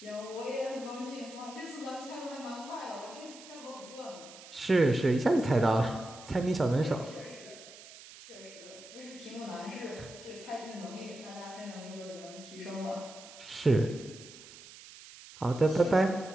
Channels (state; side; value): noise; right; hiss, 17 dB below the sound